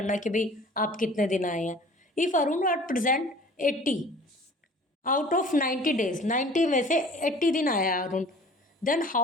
कि भाई आप कितने दिन आए हैं. If Arun are present 80 out of 90 days, 90 में से 80 दिन आया है Arun, then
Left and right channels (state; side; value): normal; both; correlation 0.47